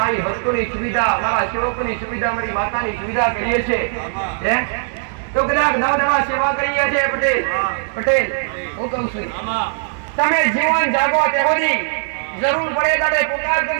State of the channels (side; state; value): left; silent; digital silence